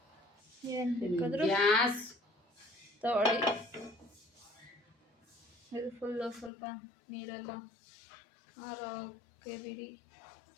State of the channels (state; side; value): drops out; right; at 6.5 s